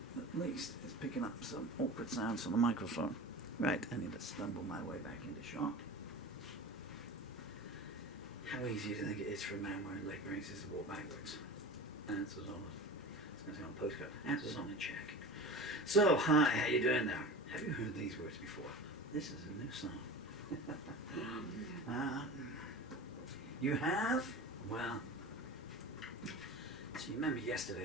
at least is picking up some awkward sounds from the microphone. Right, I need to stumble my way back into shot. How easy do you think it is for a man wearing leg braces to walk backwards? Answers on it. It's going to say on postcard. Answers on a check. So, hi, how you doing there? Have you heard these words before? This is a new song. You have? Well, so you remember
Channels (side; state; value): both; normal; correlation 0.32